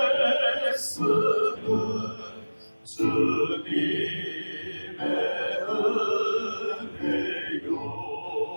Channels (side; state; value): both; inverted; correlation -1.00